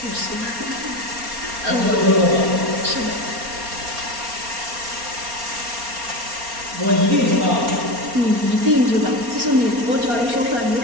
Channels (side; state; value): left; late; 4.3 ms